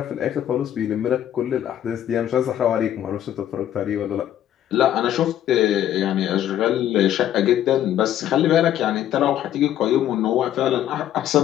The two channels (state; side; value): quieter; right; 11.5 dB